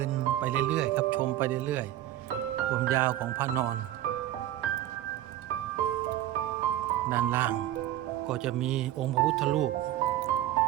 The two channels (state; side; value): quieter; left; 13.4 dB